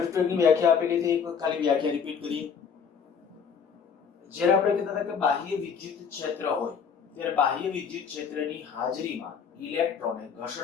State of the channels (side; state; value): right; quieter; 6.6 dB